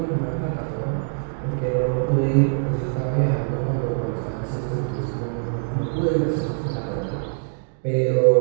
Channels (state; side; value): silent; left; digital silence